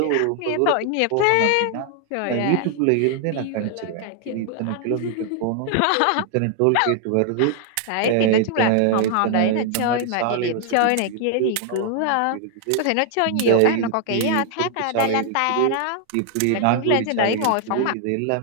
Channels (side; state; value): both; different; correlation 0.00